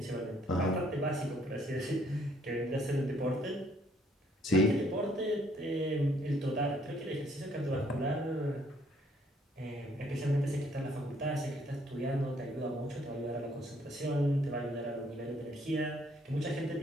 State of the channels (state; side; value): normal; both; correlation 0.65